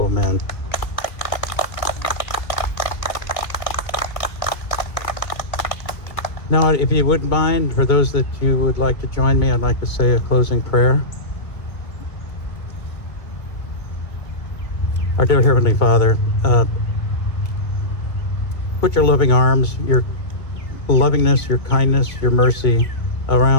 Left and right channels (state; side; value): late; right; 2.1 ms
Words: men. Now, if you wouldn't mind, for those that you would like to join me, I'd like to say a closing prayer. Our dear Heavenly Father, put your loving arms, your lovingness, your kindness, your mercy